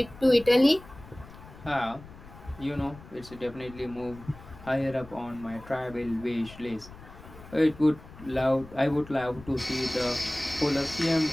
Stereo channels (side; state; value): left; noise; rumble, 18 dB below the sound